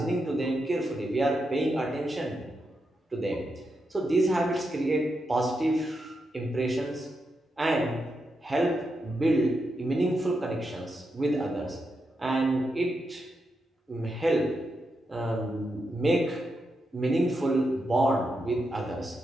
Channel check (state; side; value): normal; both; correlation 0.85